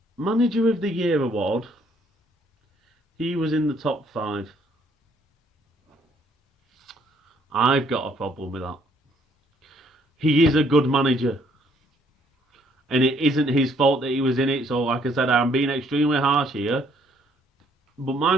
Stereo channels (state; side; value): normal; both; correlation 0.65